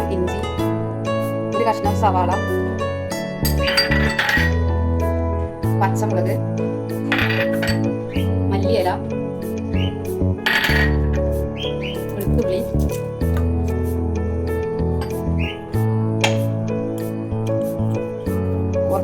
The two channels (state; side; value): identical; both; correlation 1.00